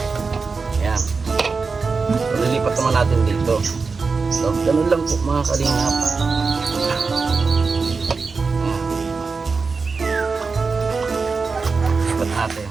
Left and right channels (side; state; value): left; quieter; 4.6 dB